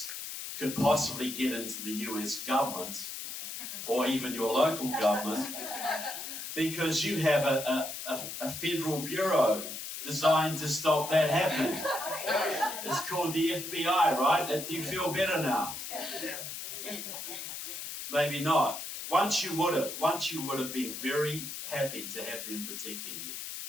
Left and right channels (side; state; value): left; noise; hiss, 7 dB below the sound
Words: could possibly get into the US government or even your local government, because you have a federal bureau designed to stop that happening. It's called the FBI, right? Do you feel better now? Maybe not. Once you would have been very happy to have them protecting you.